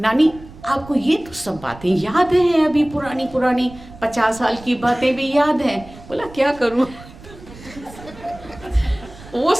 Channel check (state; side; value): noise; right; rumble, 19 dB below the sound